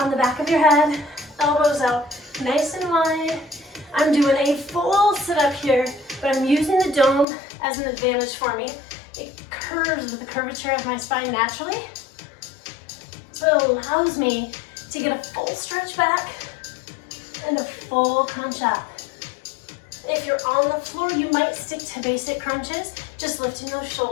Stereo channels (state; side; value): drops out; right; at 7.2 s